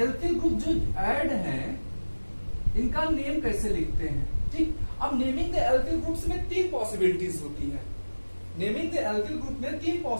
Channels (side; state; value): both; inverted; correlation -1.00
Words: ग्रुप जो ऐड हैं इनका नेम कैसे लिखते हैं। ठीक, अब नेमिंग द एल्किल ग्रुप्स में 3 पॉसिबिलिटीज होती हैं। नेमिंग द एल्किल ग्रुप में 3